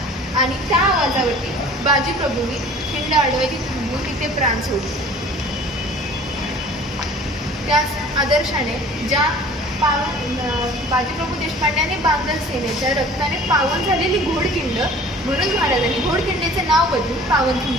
आणि त्या आवाजावरती बाजीप्रभूंनी खिंड अडवायची थांबवून तिथे प्राण सोडले. त्याच आदर्शाने ज्या बाजीप्रभू देशपांडे आणि बांधल सेनेच्या रक्ताने पावन झालेली घोडखिंड, म्हणून महाराजांनी घोडखिंडीचे नाव बदलून पावनखिंड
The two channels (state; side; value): normal; both; correlation 0.47